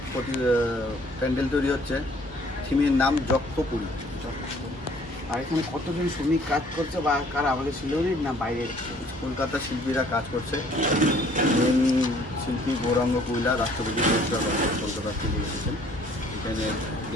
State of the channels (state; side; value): normal; both; correlation 0.58